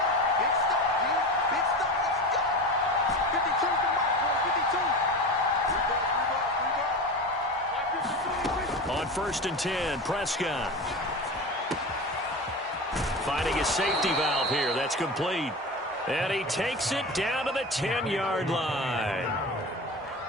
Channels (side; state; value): both; normal; correlation 0.28